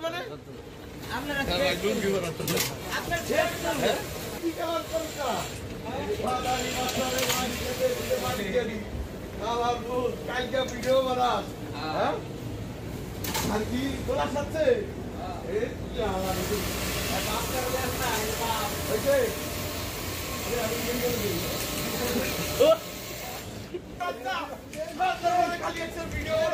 মানে? কি কালার করিস না? কালকে ভিডিও বানাস হ্যাঁ আর কি তোলা সাথে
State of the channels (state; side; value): identical; both; correlation 1.00